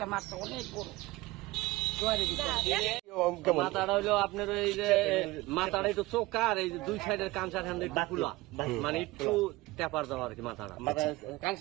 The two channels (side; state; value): left; quieter; 20.0 dB